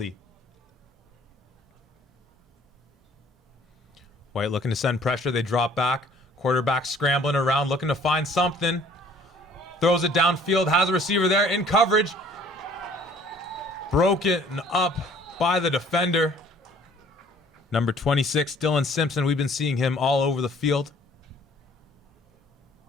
White looking to send pressure. They drop back. Quarterback scrambling around, looking to find something. Throws it downfield. Has a receiver there in coverage. Broken up by the defender. Number 26, Dylan Simpson. We've been seeing him all over the field.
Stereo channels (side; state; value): both; normal; correlation 0.55